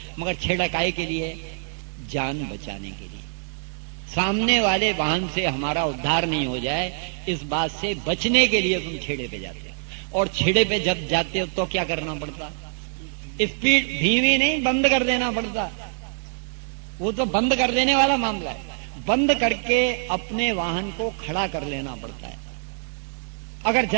मगर छेड़ा काहे के लिए? जान बचाने के लिए। सामने वाले वाहन से हमारा उद्धार नहीं हो जाए, इस बात से बचने के लिए तुम छेड़े पे जाते हो। और छेड़े पे जब जाते हो तो क्या करना पड़ता? स्पीड धीमी नहीं, बंद कर देना पड़ता। वो तो बंद कर देने वाला मामला है। बंद करके अपने वाहन को खड़ा कर लेना पड़ता है। अगर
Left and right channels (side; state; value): left; silent; digital silence